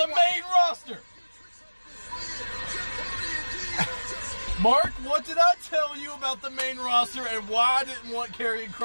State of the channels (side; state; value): both; inverted; correlation -1.00